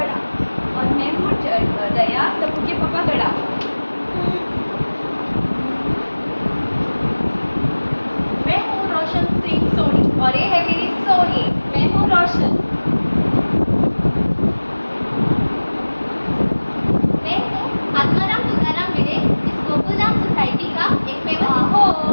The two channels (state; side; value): inverted; both; correlation -1.00